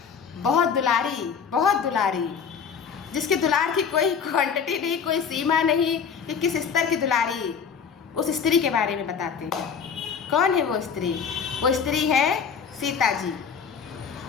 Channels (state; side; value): quieter; right; 6.5 dB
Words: बहुत दुलारी जिसके दुलार की कोई क्वांटिटी नहीं, कोई सीमा नहीं कि किस स्तर की दुलारी, उस स्त्री के बारे में बताते हैं। कौन है वो स्त्री? वो स्त्री है सीता जी,